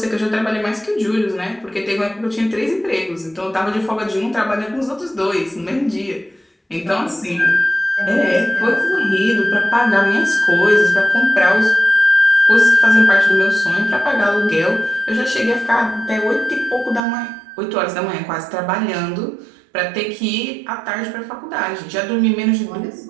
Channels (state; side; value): drops out; left; at 17.0 s